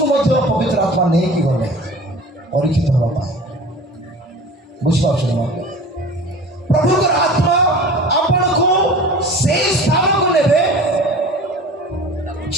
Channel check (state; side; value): normal; both; correlation 0.40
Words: ମଧ୍ୟ ପବିତ୍ର ଆତ୍ମା ନେଇକି ଗଲେ ପରୀକ୍ଷିତ ହେବା ପାଇଁ। ବୁଝିପାରୁଛନ୍ତି ନା? ପ୍ରଭୁଙ୍କର ଆତ୍ମା ଆପଣଙ୍କୁ ସେଇ ସ୍ଥାନକୁ ନେବେ